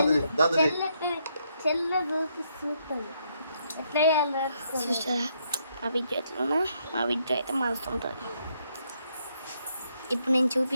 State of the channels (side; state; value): both; inverted; correlation -0.75